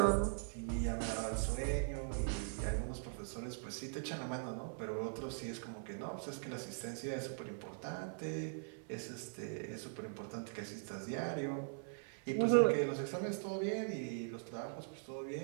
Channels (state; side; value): silent; left; 50 dB below the other